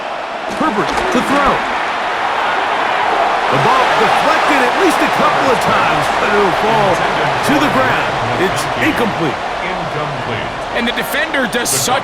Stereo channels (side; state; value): both; identical; correlation 1.00